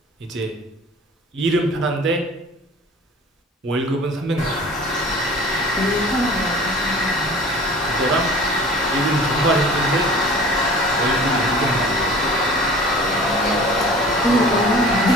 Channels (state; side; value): normal; both; correlation 0.43